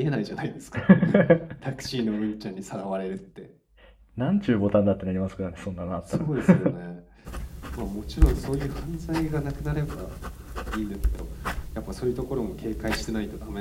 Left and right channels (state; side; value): identical; both; correlation 1.00